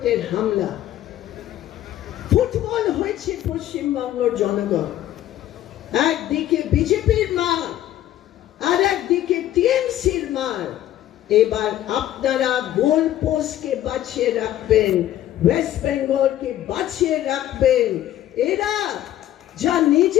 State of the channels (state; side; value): quieter; right; 12.8 dB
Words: হামলা। ফুটবল হয়েছে পশ্চিমবঙ্গের জনগণ, একদিকে বিজেপির মার আর একদিকে টিএমসির মার। এবার আপনারা গোল পোস্টকে বাঁচিয়ে রাখবেন, ওয়েস্ট বেঙ্গলকে বাঁচিয়ে রাখবেন। এরা যা